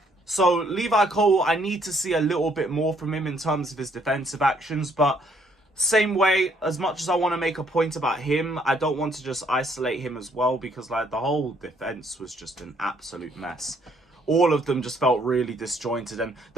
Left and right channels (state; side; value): normal; both; correlation 0.67